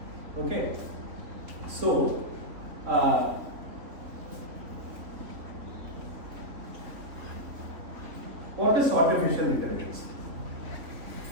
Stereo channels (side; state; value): left; late; 3.6 ms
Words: Okay, so what is artificial intelligence?